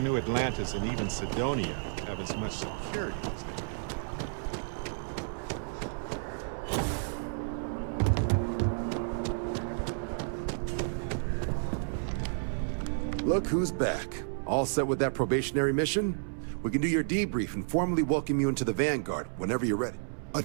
Atlantis and even Sidonia have as much security as they do. Look who's back. All set with that probationary mission? We can do your debrief and formally welcome you into the Vanguard whenever you're ready. A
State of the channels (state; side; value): silent; left; digital silence